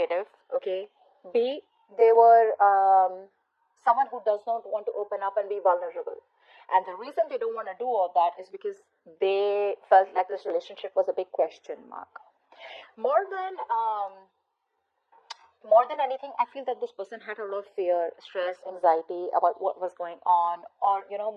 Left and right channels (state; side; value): identical; both; correlation 1.00